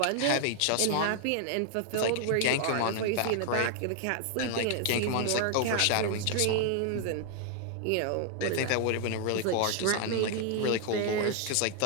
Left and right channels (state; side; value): different; both; correlation 0.00